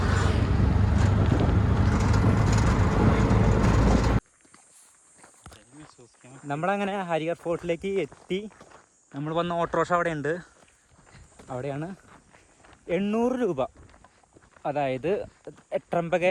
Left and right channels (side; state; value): both; identical; correlation 1.00